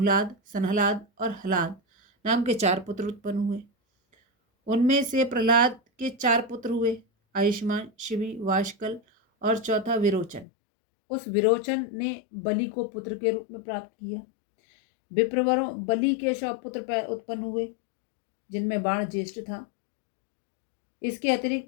सनहलाद और हलाद नाम के 4 पुत्र उत्पन्न हुए। उनमें से प्रहलाद के 4 पुत्र हुए, आयुष्मान, शिवी, वाशकल और चौथा विरोचन। उस विरोचन ने बलि को पुत्र के रूप में प्राप्त किया। विप्रवरों, बलि के 100 पुत्र उत्पन्न हुए, जिनमें बाण ज्येष्ठ था। इसके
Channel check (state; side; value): drops out; right; at 10.5 s